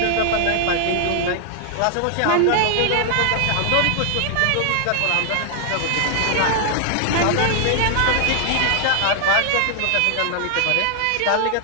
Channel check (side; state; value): both; different; correlation 0.00